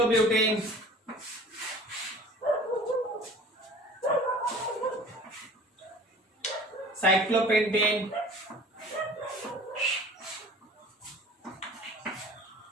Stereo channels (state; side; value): normal; both; correlation 0.44